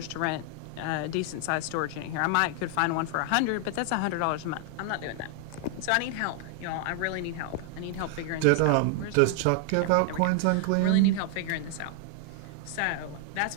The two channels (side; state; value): both; different; correlation 0.00